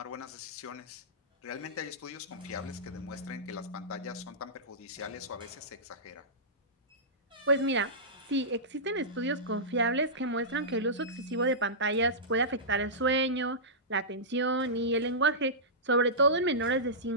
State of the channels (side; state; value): both; normal; correlation -0.16